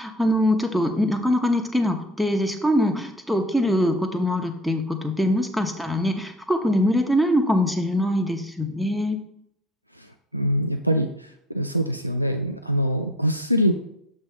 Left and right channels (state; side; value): normal; both; correlation 0.42